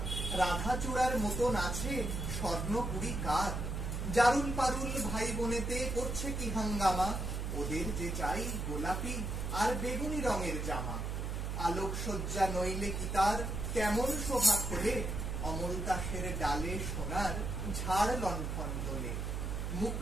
রাধা চূড়ার মতন আছে স্বর্ণপুরী কার। জারুল পারুল ভাই বোনেতে করছে কি হাঙ্গামা, ওদের যে চাই গোলাপি আর বেগুনি রঙের জামা। আলোকসজ্জা নইলে কি তার কেমন শোভা খোলে, অমল দাসের ডালে সোনার ঝাড় লণ্ঠন দোলে। মুখ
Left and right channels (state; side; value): noise; right; hum, 3 dB below the sound